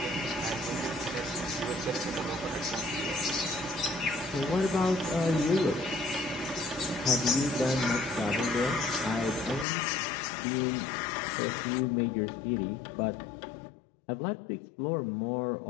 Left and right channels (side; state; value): right; drops out; at 9.7 s